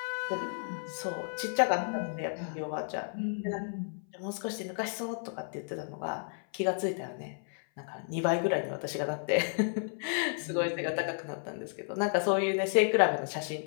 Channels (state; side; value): silent; right; 56 dB below the other